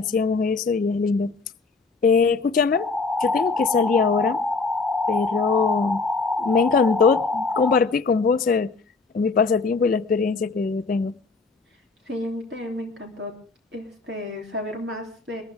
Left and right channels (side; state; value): right; quieter; 4.2 dB